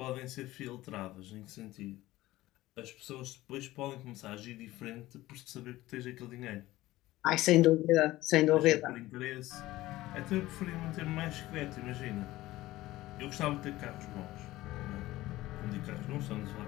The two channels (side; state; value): right; quieter; 17.1 dB